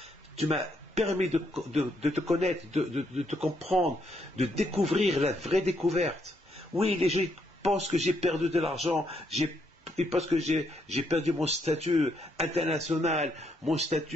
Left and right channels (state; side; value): normal; both; correlation 0.75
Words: permis de te connaître, de te comprendre, de découvrir la vraie découverte. Oui, les gens pensent que j'ai perdu de l'argent, ils pensent que j'ai perdu mon statut international, mon